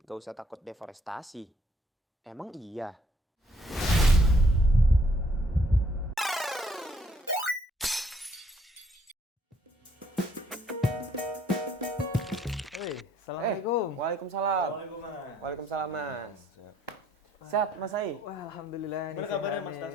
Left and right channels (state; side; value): normal; both; correlation 0.66